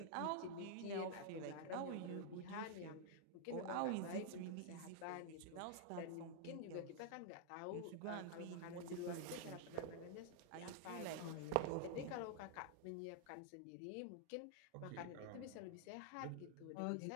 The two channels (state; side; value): different; both; correlation 0.00